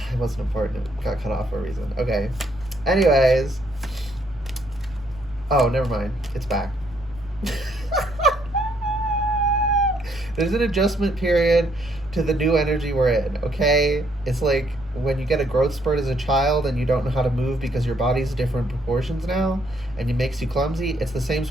It wasn't important. It got cut off for a reason. Okay. Anyways. Oh, never mind. It's back. There's an adjustment period to the new energy we're in, okay? It's like when you get a growth spurt as a child and you don't know how to move because your body's different proportions now and it makes you clumsy. It's the same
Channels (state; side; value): noise; right; rumble, 20 dB below the sound